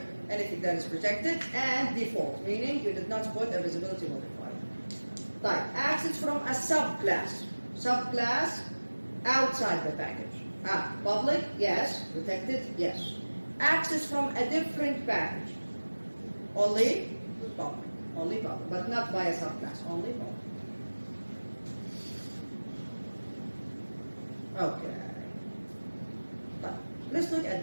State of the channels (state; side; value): inverted; both; correlation -1.00